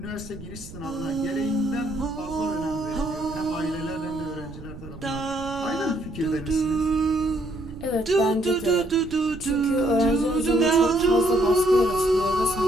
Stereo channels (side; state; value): right; noise; rumble, 15 dB below the sound